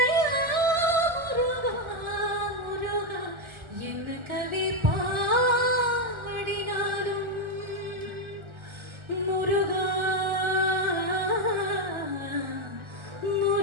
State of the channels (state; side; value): late; left; 1.4 ms